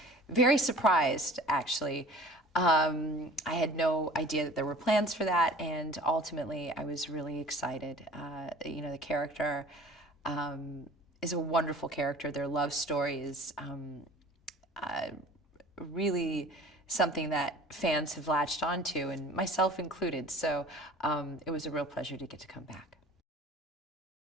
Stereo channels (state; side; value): normal; both; correlation 0.45